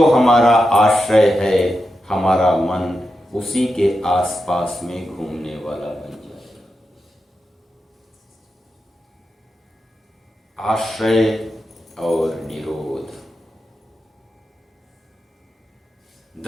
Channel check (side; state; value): both; normal; correlation 0.88